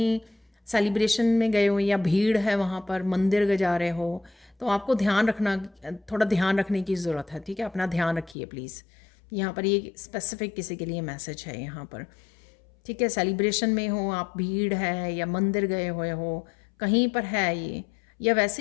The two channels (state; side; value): drops out; right; at 8.3 s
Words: सेलिब्रेशन में गए हो या भीड़ है वहाँ पर, मंदिर जा रहे हो, तो आपको ध्यान रखना, थोड़ा ध्यान रखने की ज़रूरत है। ठीक है, अपना ध्यान रखिए प्लीज़। यहाँ पर ये स्पेसिफिक किसी के लिए मैसेज है यहाँ पर। ठीक है, सेलिब्रेशन में हो आप, भीड़ है या मंदिर गए हुए हो, कहीं पर है ये, या